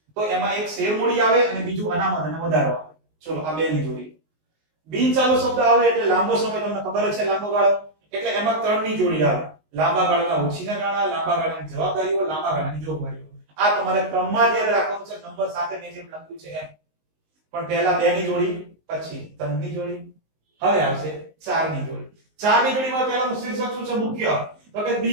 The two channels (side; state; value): left; late; 19 ms